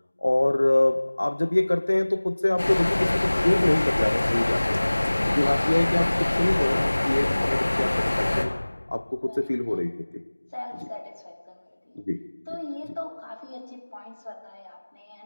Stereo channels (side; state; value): both; inverted; correlation -1.00